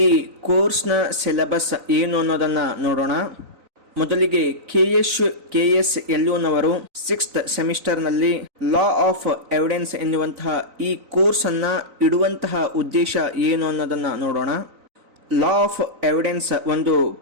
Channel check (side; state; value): left; late; 3.9 ms